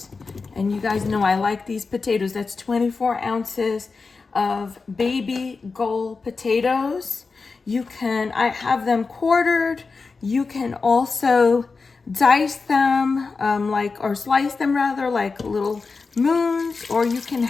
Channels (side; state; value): right; quieter; 4.4 dB